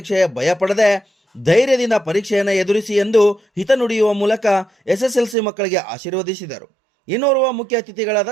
ಭಯ ಪಡದೆ ಧೈರ್ಯದಿಂದ ಪರೀಕ್ಷೆಯನ್ನು ಎದುರಿಸಿ ಎಂದು ಹಿತ ನುಡಿಯುವ ಮೂಲಕ SSLC ಮಕ್ಕಳಿಗೆ ಆಶೀರ್ವದಿಸಿದರು. ಇನ್ನೋರ್ವ ಮುಖ್ಯ ಅತಿಥಿಗಳಾದ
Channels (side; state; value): left; drops out; at 5.4 s